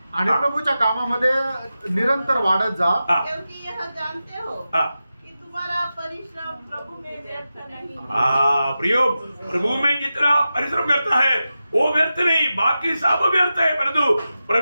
आणि हा. प्रभूच्या कामामध्ये निरंतर वाढत जा. हाँ, क्योंकि यह जानते हो हाँ, कि तुम्हारा परिश्रम प्रभु में व्यर्थ नहीं. हाँ, प्रियो, प्रभु में जितना परिश्रम करता है वो व्यर्थ नहीं, बाकी सब व्यर्थ है, परंतु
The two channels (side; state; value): both; inverted; correlation -0.92